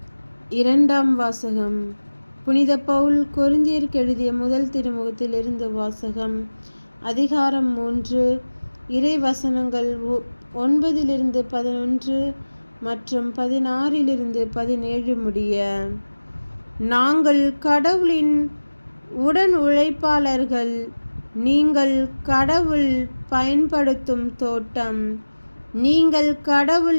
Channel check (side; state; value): both; inverted; correlation -1.00